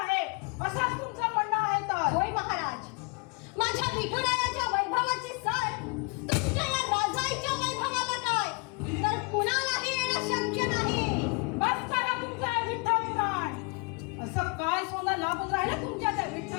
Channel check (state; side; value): quieter; right; 31.6 dB